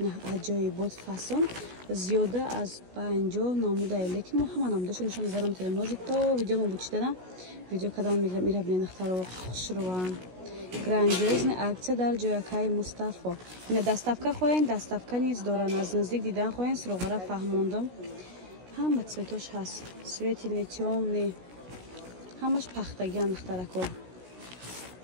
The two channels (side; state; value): left; late; 16 ms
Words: аҷоибот фасон зиёда аз 50 намудаи лекин мо ҳама намудаашо нишон мезанам метавонем. Ҳозир то видео мо бучидана видео кадан мегирам ира бинен духтаро хушруван. Грандиозная акция дар ҷоякаи Мустафо. Ина доставка хоҳен, доставка низ доран. Аз наздик дидан хоҳен, сроғара фаҳмондам. Ҳама цветош ҳаст. Светлый, тёмный. Ҳамаш пахтагиан духтарако.